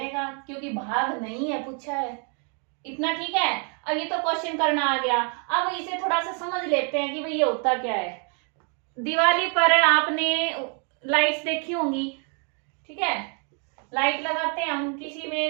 क्योंकि भाग नहीं है पूछा है। इतना ठीक है। अब ये तो क्वेश्चन करना आ गया। अब इसे थोड़ा सा समझ लेते हैं कि भाई ये होता क्या है। दिवाली पर आपने लाइट्स देखी होंगी, ठीक है, लाइट लगाते हैं हम, किसी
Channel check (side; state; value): left; quieter; 38.9 dB